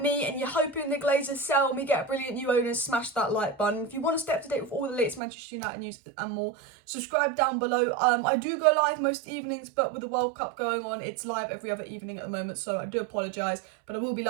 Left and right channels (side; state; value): left; drops out; at 5.2 s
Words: and you're hoping the Glazers sell and we get a brilliant new owner, smash that like button. If you want to stay up to date with all the latest Manchester United news and more, subscribe down below. I do go live most evenings, but with the World Cup going on, it's live every other evening at the moment, so I do apologise, but I will be